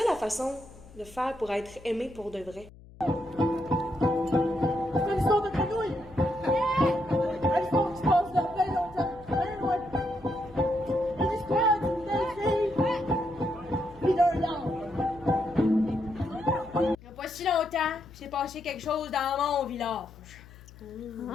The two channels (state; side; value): noise; left; hum, 21 dB below the sound